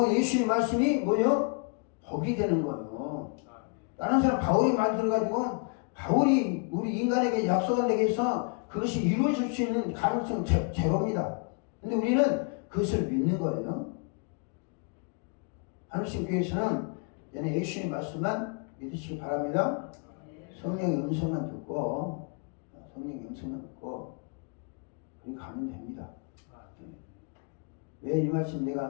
예수님 말씀이 뭐예요? 복이 되는 거예요. 다른 사람 바울이 말 들어가지고 바울이 우리 인간에게 약속한 데에 서 그것이 이루어질 수 있는 가능성은 제로입니다. 근데 우리는 그것을 믿는 거예요. 하늘신 교회에서는 얘네 예수님 말씀만 믿으시기 바랍니다. 성령의 음성만 듣고 그렇게 가면 됩니다. 왜 이 말씀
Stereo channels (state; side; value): quieter; right; 37.9 dB